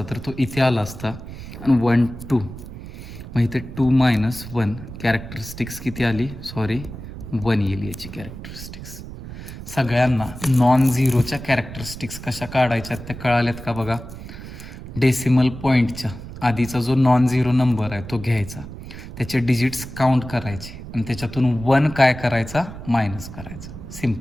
तर तो इथे आला असता, आणि 1 2. मग इथे 2 मायनस 1, कॅरेक्टरिस्टिक्स किती आली, 1 येईल याची कॅरेक्टरिस्टिक्स. सगळ्यांना नॉन झिरोच्या कॅरेक्टरिस्टिक्स कशा काढायच्या त्या कळाल्यात का बघा. डेसिमल पॉईंटच्या आधीचा जो नॉन झिरो नंबर आहे तो घ्यायचा, त्याचे डिजिट्स काउंट करायचे, आणि त्याच्यातून 1 काय करायचा, मायनस करायचा.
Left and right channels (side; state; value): right; noise; rumble, 12 dB below the sound